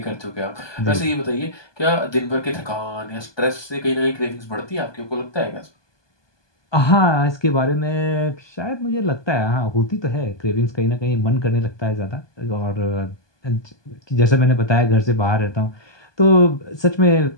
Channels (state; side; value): late; right; 1.2 ms